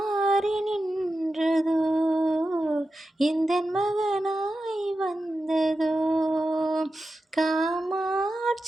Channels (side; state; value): both; normal; correlation 0.91